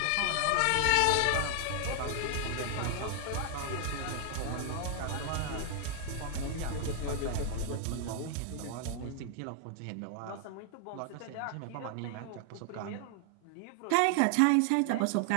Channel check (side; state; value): both; different; correlation 0.00